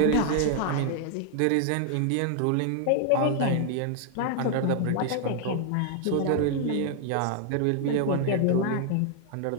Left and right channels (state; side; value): different; both; correlation 0.00